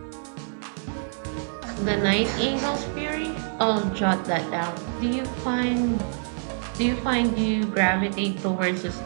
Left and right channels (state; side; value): silent; left; 61 dB below the other